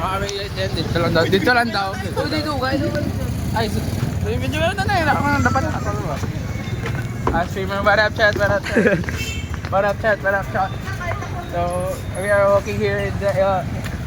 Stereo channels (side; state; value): both; identical; correlation 1.00